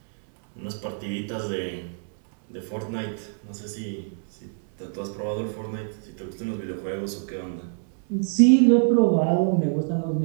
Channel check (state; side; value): silent; left; digital silence